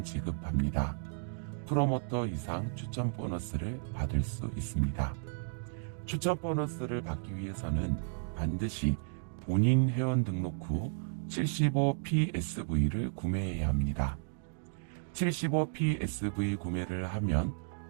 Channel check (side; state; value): left; silent; digital silence